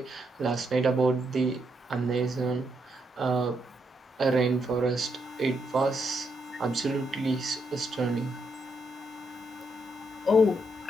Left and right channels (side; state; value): both; normal; correlation 0.79